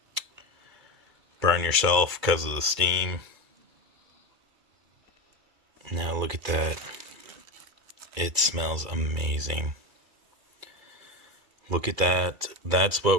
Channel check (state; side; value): late; left; 2.3 ms